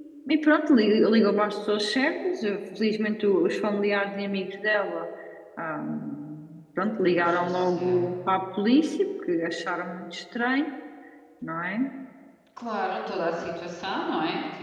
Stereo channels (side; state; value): both; identical; correlation 1.00